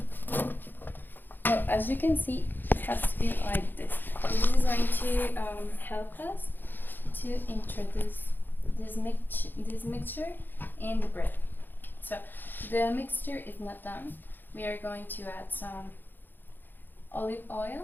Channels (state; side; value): late; right; 0.092 ms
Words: As you can see, it has to be like this. This is going to help us to introduce this mixture in the bread. So the mixture is not done. We are going to add some olive